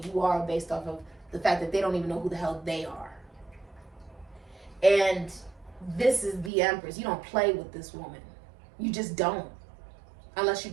are based off of the fact that they don't even know who the hell they are. And this is the Empress. You don't play with this woman. You just don't. Unless you're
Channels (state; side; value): drops out; left; at 6.5 s